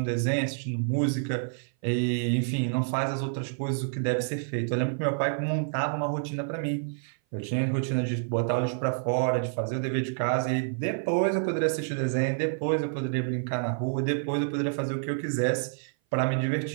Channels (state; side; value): silent; left; 56 dB below the other